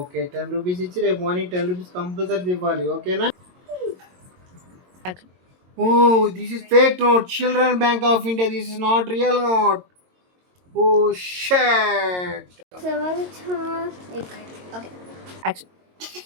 10 రూపీస్ ఇచ్చి రేపు మార్నింగ్ 10 రూపీస్ కంపల్సరీ ఇవ్వాలి. ఓకేనా? Oh, this is fake note. Children Bank of India. This is not real note. Oh shit. Okay action.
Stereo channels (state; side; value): late; left; 22 ms